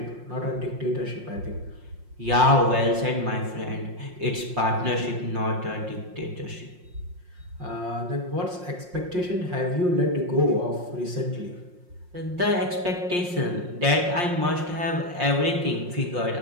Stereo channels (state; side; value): late; left; 5.6 ms